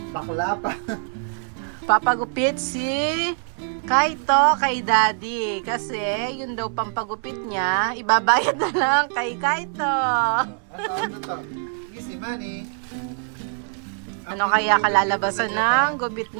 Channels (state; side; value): silent; left; 55 dB below the other